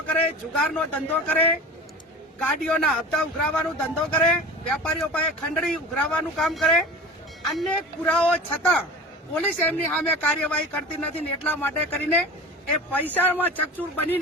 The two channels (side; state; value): both; normal; correlation 0.35